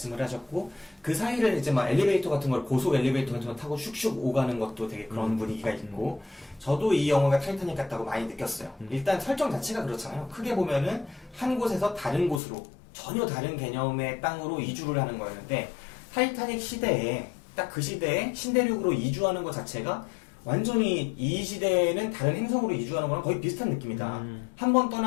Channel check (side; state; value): right; drops out; at 12.4 s